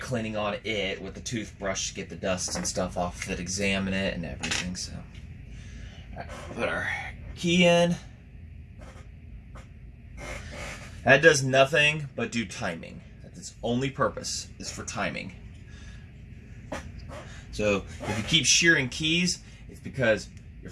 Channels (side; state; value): both; identical; correlation 1.00